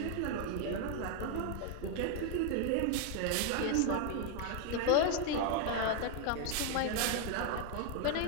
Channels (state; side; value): different; both; correlation 0.00